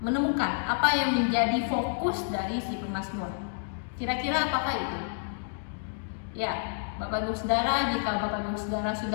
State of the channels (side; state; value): right; silent; digital silence